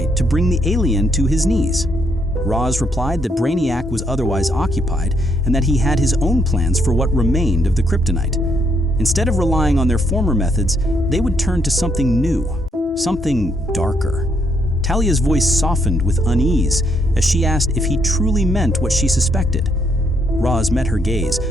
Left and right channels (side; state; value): both; normal; correlation 0.73